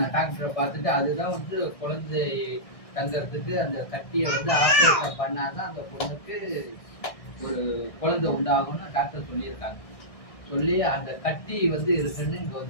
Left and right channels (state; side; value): late; right; 1.6 ms